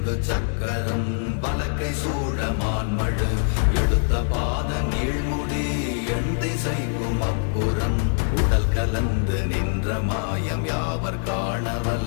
சக்கரம் வலக்கை சூழமான்மழு எடுத்த பாத நீழ்முடி எண் திசைக்கும் அப்புறம் உடல் கலந்து நின்ற மாயம் யாவர் காண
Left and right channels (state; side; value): silent; right; 62 dB below the other